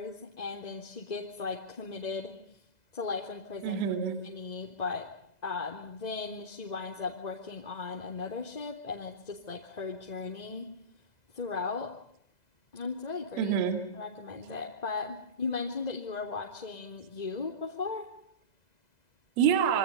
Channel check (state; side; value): late; right; 2.0 ms